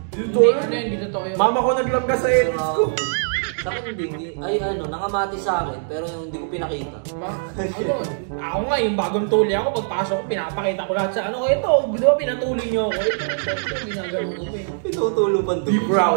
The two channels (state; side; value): silent; left; digital silence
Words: Hindi totoo yun. Mama ko naglangga sa edits ko. Sa akin hindi. Ay ano, nakamatis sa akin, pero yung hindi ko pinakita. Ako nga, yung bagong tuli ako, pagpasok ko, pinapakita ko lahat sa ano, ito, di ba pinatuli nyo ako? Ito, ginagano ko eh. Pinutulupan Be doon.